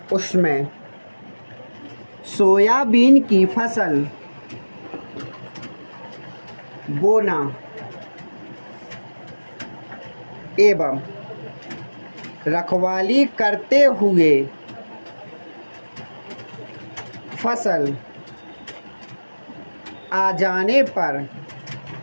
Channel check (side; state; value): both; inverted; correlation -1.00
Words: उसमें सोयाबीन की फसल बोना एवं रखवाली करते हुए फसल आ जाने पर